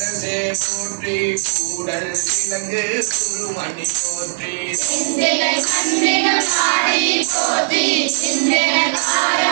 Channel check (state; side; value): silent; left; digital silence